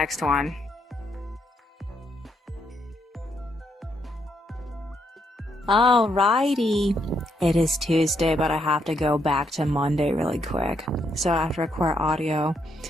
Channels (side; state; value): both; normal; correlation 0.76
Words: one. Alrighty, it is Tuesday, but I have to go back to Monday really quick. So I have to record audio.